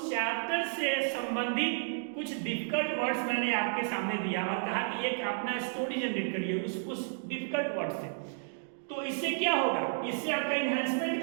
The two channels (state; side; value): silent; left; digital silence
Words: चैप्टर से संबंधित कुछ डिफिकल्ट वर्ड्स मैंने आपके सामने दिया और कहा कि एक अपना स्टोरी जनरेट करिए उस डिफिकल्ट वर्ड से। तो इससे क्या होगा, इससे आपका इन्हांसमेंट